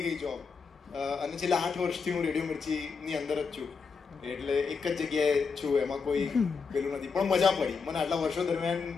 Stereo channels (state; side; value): quieter; right; 5.3 dB